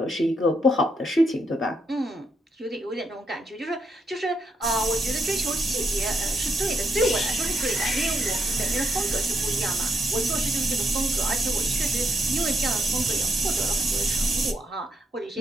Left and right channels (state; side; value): normal; both; correlation 0.79